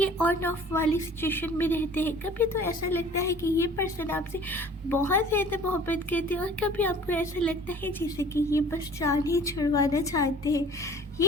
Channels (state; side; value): normal; both; correlation 0.47